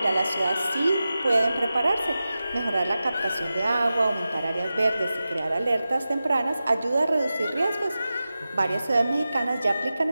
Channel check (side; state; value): both; inverted; correlation -0.94